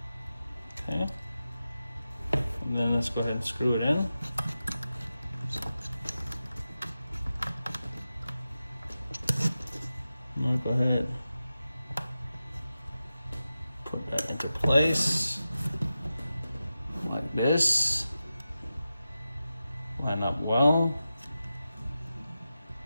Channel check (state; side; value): inverted; both; correlation -0.92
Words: Okay. And then let's go ahead and screw it in. I'm gonna go ahead, put that into place like this. Line up well.